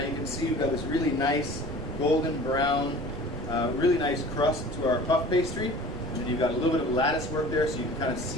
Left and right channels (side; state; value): right; noise; rumble, 12 dB below the sound